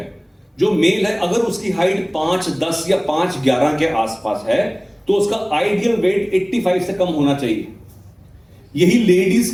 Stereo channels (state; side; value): identical; both; correlation 1.00